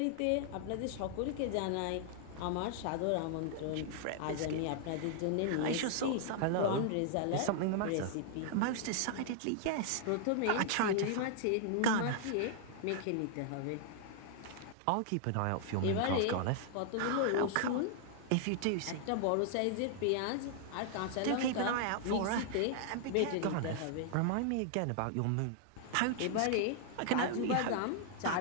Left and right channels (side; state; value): both; different; correlation 0.00